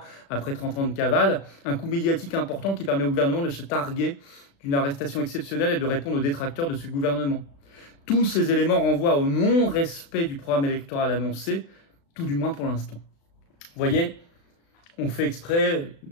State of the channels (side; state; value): right; late; 36 ms